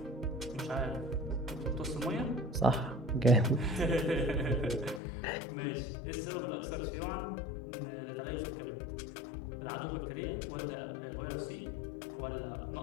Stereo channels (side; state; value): right; drops out; at 5.0 s